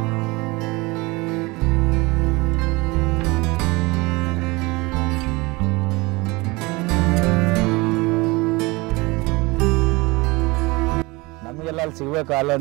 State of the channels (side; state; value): left; quieter; 23.8 dB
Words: ನಮಗೆಲ್ಲ ಅಲ್ಲಿ ಸಿಗ್ಬೇಕು ಹಾಲು